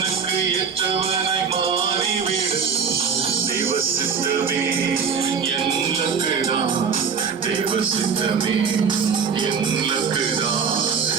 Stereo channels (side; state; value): left; quieter; 6.2 dB